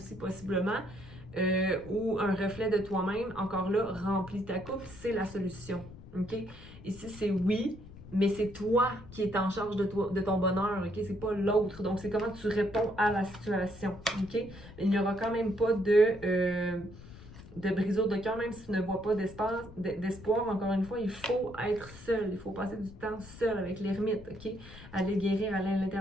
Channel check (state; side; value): noise; left; rumble, 17 dB below the sound